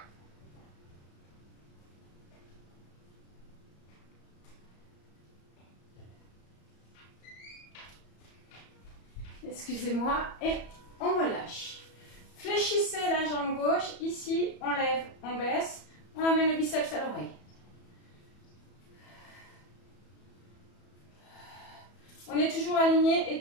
Excusez-moi. Et on relâche. Fléchissez la jambe gauche. Ici, on lève, on baisse. On amène le biceps à l'oreille. On est toujours aligné,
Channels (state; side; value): late; right; 34 ms